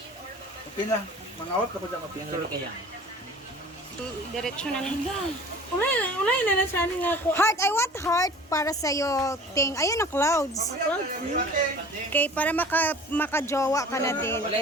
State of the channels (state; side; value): normal; both; correlation 0.44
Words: Okay na. Mga awat ako dyan ma-picture. Diretso na lang. Ulay na nasani nga ako. Heart, I want heart para sa'yo, Ting. Ayun na clouds. Okay, para makajowa ka na din.